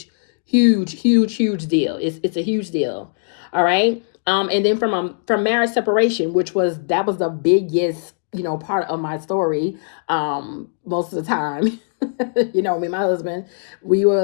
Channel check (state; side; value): silent; right; digital silence